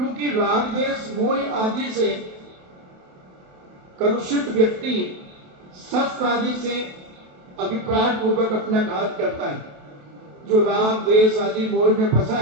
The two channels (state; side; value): late; left; 28 ms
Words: राग द्वेष मोह आदि से कलुषित व्यक्ति शस्त्र आदि से अभिप्राय पूर्वक अपना घात करता है। जो राग द्वेष आदि मोह में फंसा